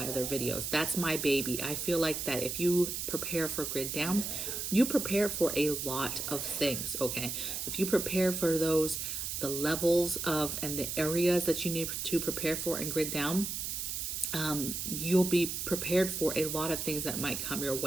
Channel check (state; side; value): noise; right; hiss, 3 dB below the sound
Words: other videos. That's my baby. I feel like that if you prepare for grid down, you prepare for a lot of things, okay? If you prepare for those, the levels of and the areas that you need to prepare for in grid down, you'll be prepared for a lot of things that might come your